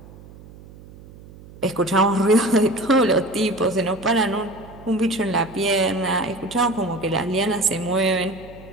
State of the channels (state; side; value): noise; right; hum, 20 dB below the sound